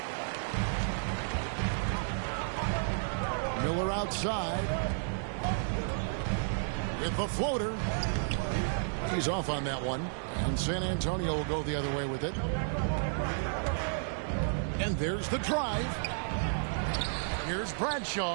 Miller outside. With the floater. He's off on that one. And San Antonio will go the other way with it. And there's the drive. Here's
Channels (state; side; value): silent; left; digital silence